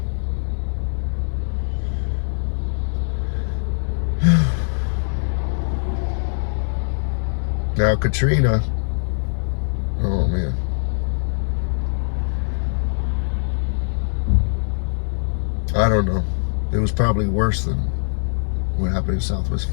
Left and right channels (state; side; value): silent; right; digital silence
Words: Now Katrina, oh man. I don't know. It was probably worse than what happened in Southwest